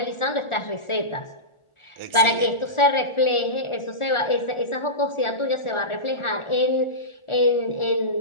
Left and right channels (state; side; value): late; right; 1.4 ms